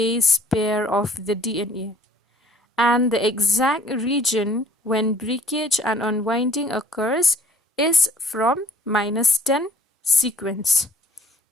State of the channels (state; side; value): normal; both; correlation 0.55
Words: pair of the DNA. And the exact region when breakage and unwinding occurs is from -10 sequence,